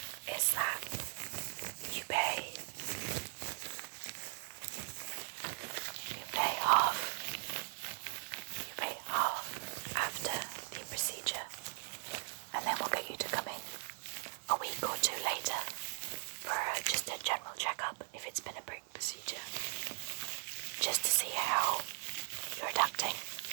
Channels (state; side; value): silent; left; digital silence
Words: is that you pay half. You pay half after the procedure, and then we'll get you to come in a week or two later for just a general checkup if it's been a brick procedure, just to see how you're adapting,